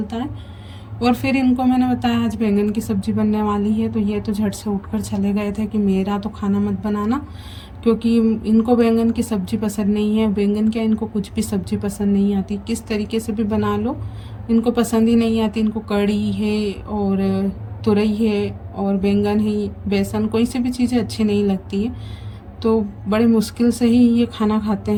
है। और फिर इनको मैंने बताया आज बैंगन की सब्ज़ी बनने वाली है, तो ये तो झट से उठकर चले गए थे कि मेरा तो खाना मत बनाना, क्योंकि इनको बैंगन की सब्ज़ी पसंद नहीं है। बैंगन क्या, इनको कुछ भी सब्ज़ी पसंद नहीं आती, किस तरीके से भी बना लो इनको पसंद ही नहीं आती। इनको कढ़ी है और तुरई है और बैंगन है, बेसन, कोई सी भी चीज़ें अच्छी नहीं लगती है। तो बड़े मुश्किल से ही ये खाना खाते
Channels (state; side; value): identical; both; correlation 1.00